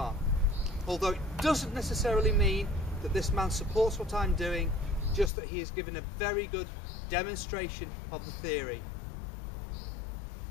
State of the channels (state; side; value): drops out; right; at 5.3 s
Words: although it doesn't necessarily mean that this man supports what I'm doing, just that he has given a very good demonstration of the theory.